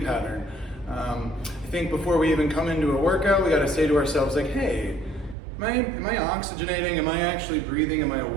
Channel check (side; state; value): left; drops out; at 5.4 s